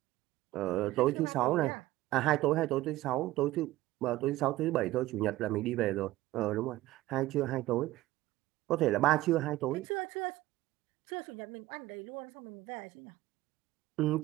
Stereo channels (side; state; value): left; quieter; 16.9 dB